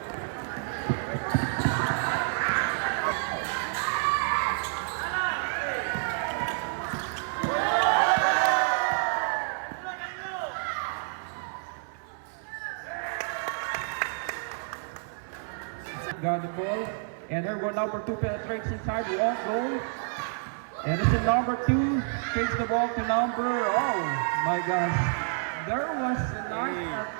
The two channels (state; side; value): silent; left; 58 dB below the other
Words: Got the ball, and here go number 2 penetrates inside, won't go. And this is number 2, takes the ball to number, oh my gosh. There was a nice